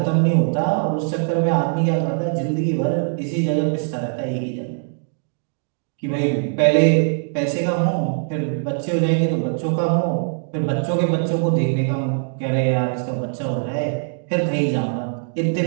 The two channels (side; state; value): left; silent; digital silence